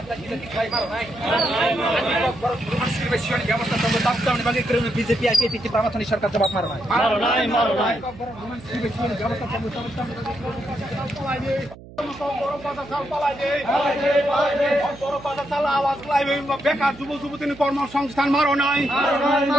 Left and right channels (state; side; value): noise; right; hum, 18 dB below the sound